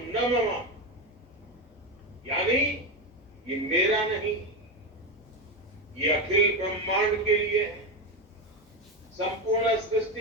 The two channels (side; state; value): both; normal; correlation 0.14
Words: न मम, यानी ये मेरा नहीं, ये अखिल ब्रह्मांड के लिए है, संपूर्ण